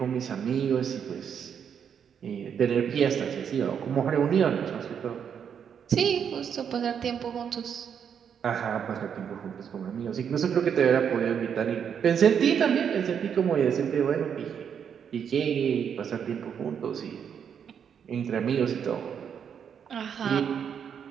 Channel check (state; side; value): quieter; left; 7.8 dB